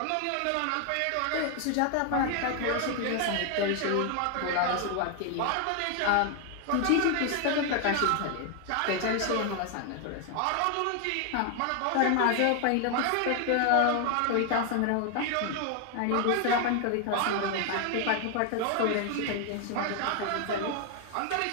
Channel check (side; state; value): both; different; correlation 0.00